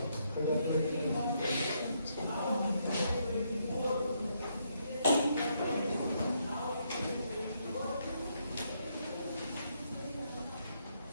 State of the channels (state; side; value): inverted; both; correlation -0.75